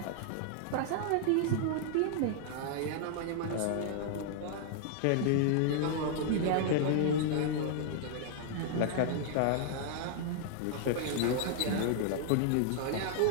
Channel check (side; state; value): both; different; correlation -0.01